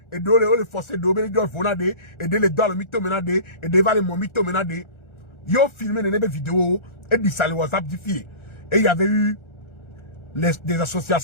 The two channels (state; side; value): late; right; 1.4 ms